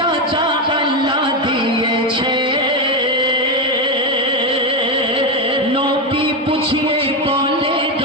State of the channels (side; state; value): both; normal; correlation 0.11